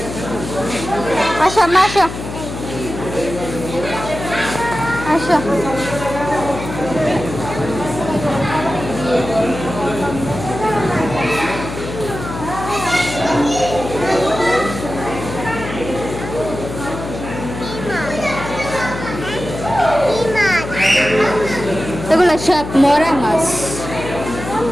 আসো মা আসো আসো এগুলো সব মরা মাছ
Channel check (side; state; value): left; noise; hum, 8 dB below the sound